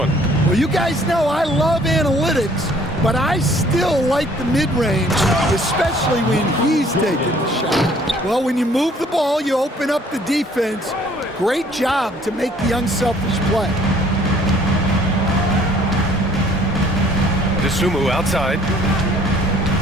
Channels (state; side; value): normal; both; correlation 0.58